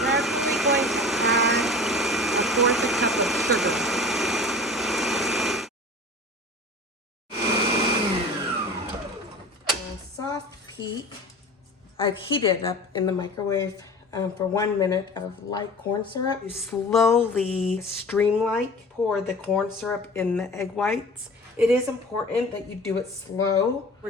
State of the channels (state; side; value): normal; both; correlation 0.38